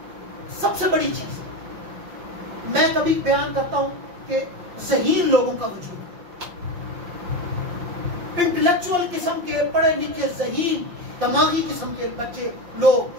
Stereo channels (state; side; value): late; left; 5.7 ms